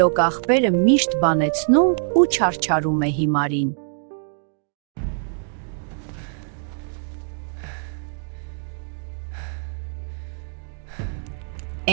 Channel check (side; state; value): left; silent; digital silence